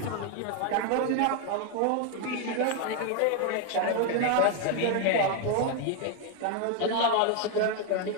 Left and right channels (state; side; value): different; both; correlation 0.00